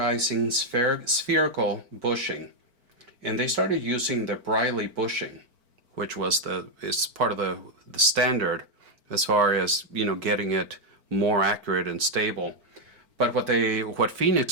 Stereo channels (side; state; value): left; late; 4.4 ms